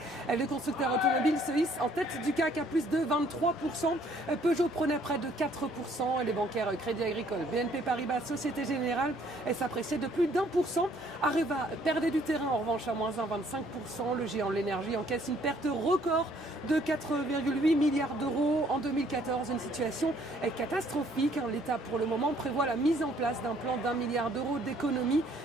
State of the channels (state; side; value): normal; both; correlation 0.63